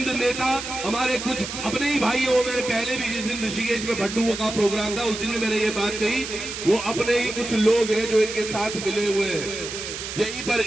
नेता, हमारे कुछ अपने ही भाई हो, मैंने पहले भी जिस दिन ऋषिकेश में भट्टू का प्रोग्राम था उस दिन भी मैंने ये बात कही, वो अपने ही कुछ लोग हैं जो इनके साथ मिले हुए हैं। यहीं पर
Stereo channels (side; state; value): right; noise; hiss, 7 dB below the sound